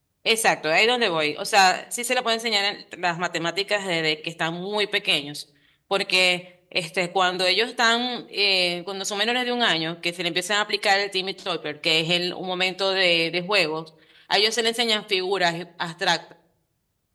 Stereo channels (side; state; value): both; identical; correlation 1.00